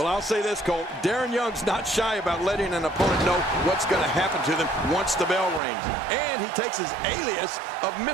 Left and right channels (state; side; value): drops out; left; at 5.6 s